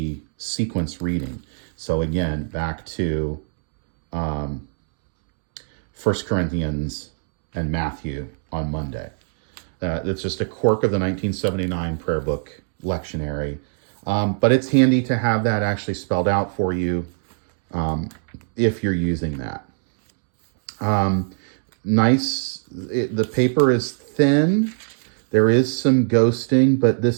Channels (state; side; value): silent; left; digital silence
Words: sequence reading. So again, back to 1 Corinthians and Matthew on Monday. It's just a quirk of the 1979 prayer book lectionary. But it's handy to have that actually spelled out for you if you're using that. The paper is thin. There is some ghosting, but